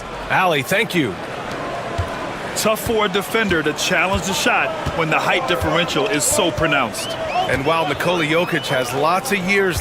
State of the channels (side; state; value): both; identical; correlation 1.00